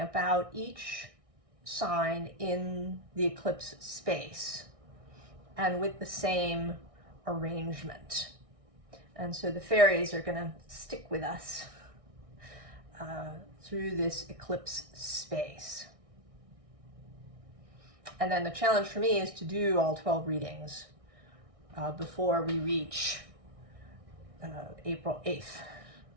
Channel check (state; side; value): late; left; 1.6 ms